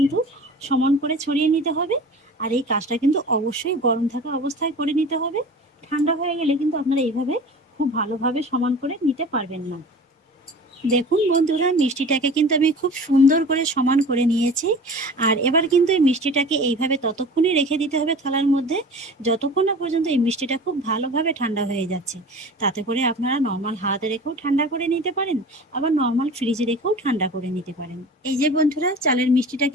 সমান করে ছড়িয়ে নিতে হবে। আর এই কাজটা কিন্তু অবশ্যই গরম থাকা অবস্থায় করে নিতে হবে। ঠান্ডা হয়ে গেলে কিন্তু আপনারা এইভাবে খুব ভালোভাবে সমান করে নিতে পারবেন না। দেখুন বন্ধুরা, মিষ্টিটাকে কিন্তু আমি খুব সুন্দর করে সমান করে নিয়েছি। আর এবার কিন্তু এই মিষ্টিটাকে এইভাবে ততক্ষণই রেখে দিতে হবে থালার মধ্যে, যতক্ষণ না পর্যন্ত এই মিষ্টিটা খুব ভালোভাবে ঠান্ডা হয়ে যাচ্ছে। তাতে করে আপনারা নর্মাল হাতে রেখেও ঠান্ডা করে নিতে পারেন, আবার নর্মাল ফ্রিজে রেখেও ঠান্ডা করে নিতে পারেন। এই যে বন্ধুরা, চালের মিষ্টিটা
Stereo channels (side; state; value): both; normal; correlation 0.39